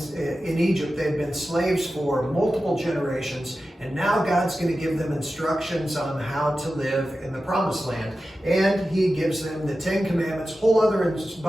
in Egypt. They had been slaves for multiple generations, and now God's going to give them instructions on how to live in the Promised Land. And He gives them the 10 Commandments, whole other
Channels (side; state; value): both; normal; correlation 0.93